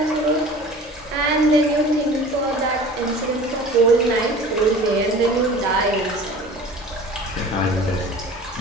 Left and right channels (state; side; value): normal; both; correlation 0.42